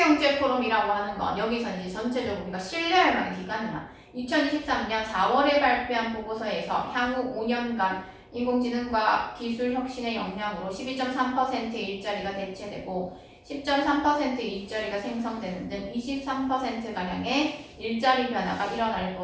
하는 건 여기서 이제 전체적으로 우리가 신뢰할 만한 기관이야. 2023년 4월에 발표한 보고서에서 향후 5년간 인공지능과 기술 혁신의 역량으로 12.3%의 일자리가 대체되고 10.3%의 일자리가 생성되는 등 23%가량의 일자리 변화가 일어날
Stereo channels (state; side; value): identical; both; correlation 1.00